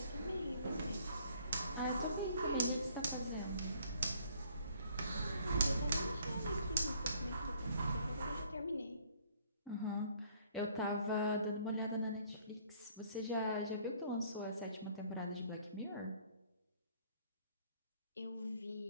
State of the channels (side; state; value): both; inverted; correlation -0.61